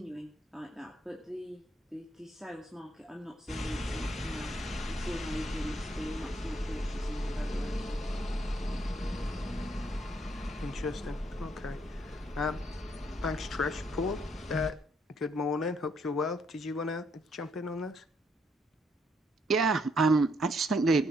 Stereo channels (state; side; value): normal; both; correlation 0.72